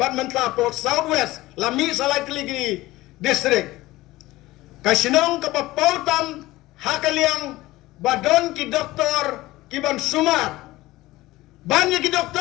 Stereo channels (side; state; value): right; quieter; 18.2 dB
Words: mentla po southwest lami salai keligi district kasinong ka pautam hakaliang badon ki doktor kiban sumar banyak ki